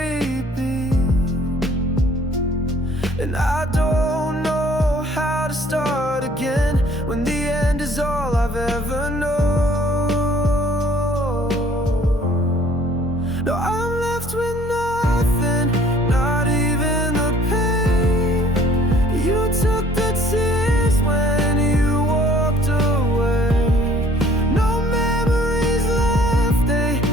beat. And I don't know how to start again when the end is all I've ever known. No, I'm left with nothing, not even the pain. You took the tears when you walked away. No memories left, they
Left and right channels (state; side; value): normal; both; correlation 0.56